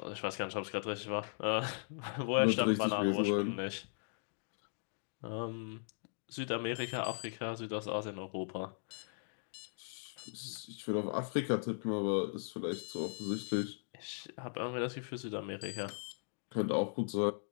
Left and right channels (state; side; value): silent; right; digital silence